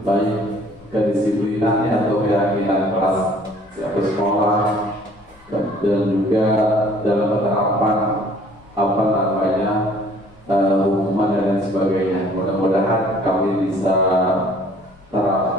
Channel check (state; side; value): noise; left; rumble, 29 dB below the sound